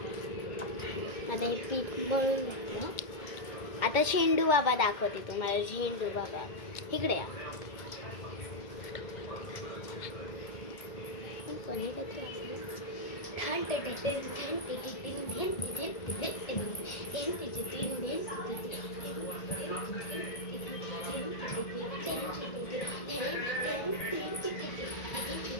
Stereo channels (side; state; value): right; late; 2.1 ms